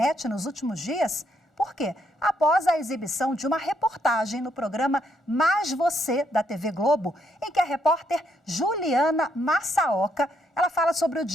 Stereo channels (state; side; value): normal; both; correlation 0.74